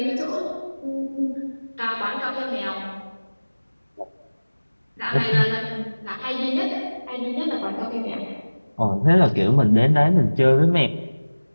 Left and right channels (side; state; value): both; inverted; correlation -1.00